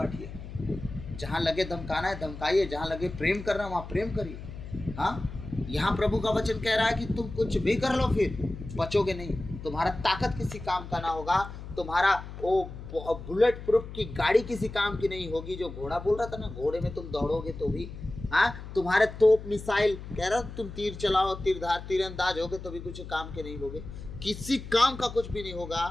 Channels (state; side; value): noise; left; hum, 11 dB below the sound